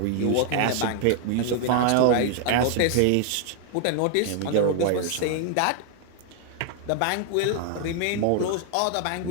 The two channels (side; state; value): both; different; correlation 0.00